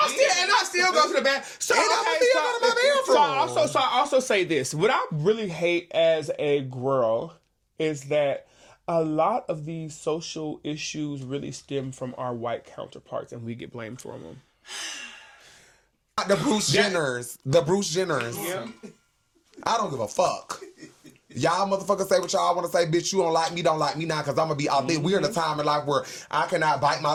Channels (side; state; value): both; identical; correlation 1.00